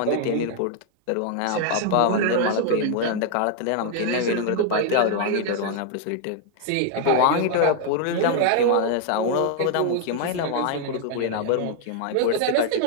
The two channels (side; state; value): both; different; correlation 0.00